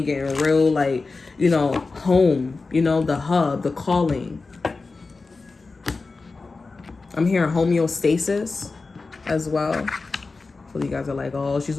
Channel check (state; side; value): quieter; right; 4.0 dB